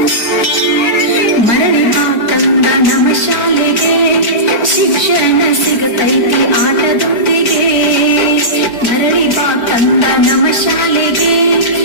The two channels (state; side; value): late; right; 4.9 ms